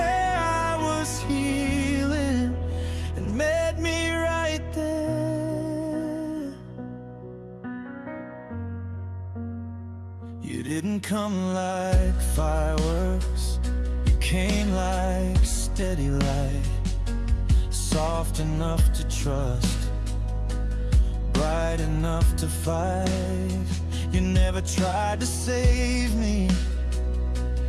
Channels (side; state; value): both; identical; correlation 1.00